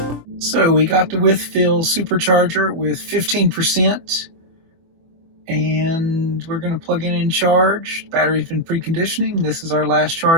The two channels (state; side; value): late; left; 24 ms